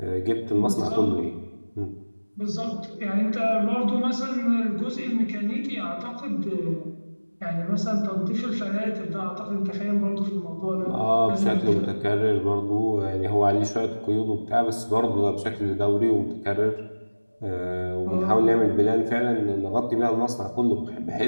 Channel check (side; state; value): both; inverted; correlation -1.00